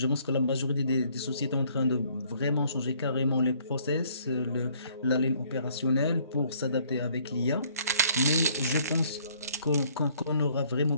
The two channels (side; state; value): both; inverted; correlation -0.62